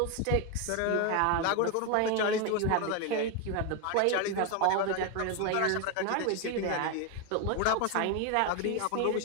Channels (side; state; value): both; different; correlation 0.01